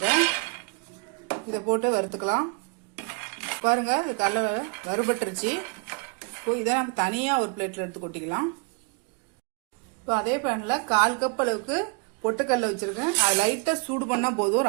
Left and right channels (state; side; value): quieter; left; 33.5 dB